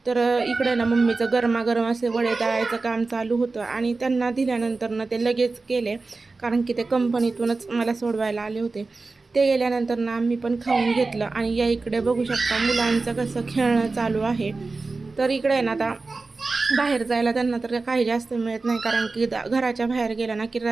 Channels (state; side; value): quieter; left; 3.8 dB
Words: तर इकडे ना मम्मीचं गरमागरम असे वडे तळायचं काम चालू होतं आणि त्यांना दिल्यानंतर ना ते लगेच केले, कारण की ते कंपनीतूनच मला सोडवायला आले होते. ते गेल्यानंतर ना आम्ही पण खाऊन घेतलं. आणि या इकडे बघू शकता मुलांचं कसं खेळणं चालू आहे. तर इकडे ना आता बाहेर जायला त्यांना तर काही जास्त मिळत नाही, कारण की घराच्या बाहेर गेला ना की